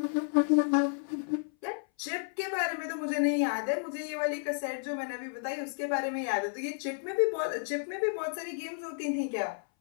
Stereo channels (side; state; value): right; silent; 57 dB below the other